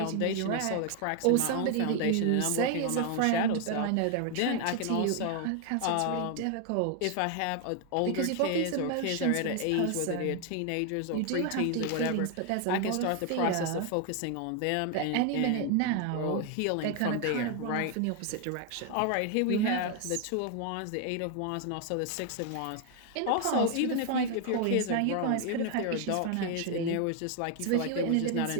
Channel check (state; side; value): different; both; correlation 0.00